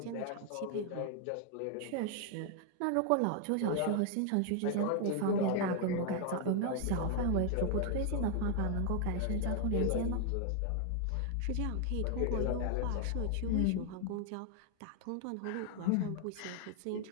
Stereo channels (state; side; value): different; both; correlation 0.00